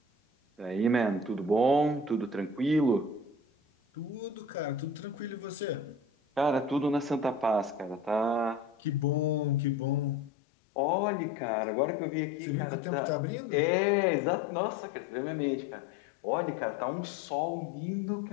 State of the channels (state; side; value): drops out; right; at 10.3 s